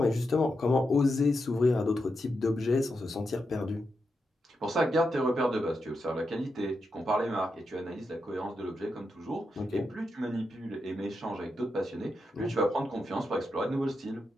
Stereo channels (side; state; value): both; normal; correlation 0.85